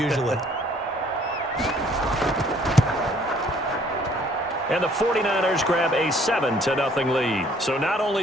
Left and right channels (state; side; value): normal; both; correlation 0.60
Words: And the 49ers grab a 7-0 lead. So not